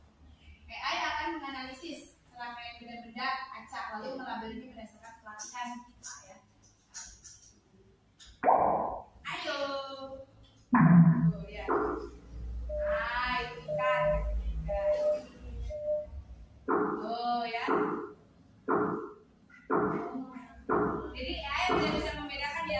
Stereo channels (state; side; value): identical; both; correlation 1.00